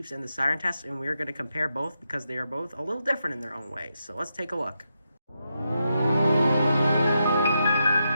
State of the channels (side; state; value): both; inverted; correlation -0.85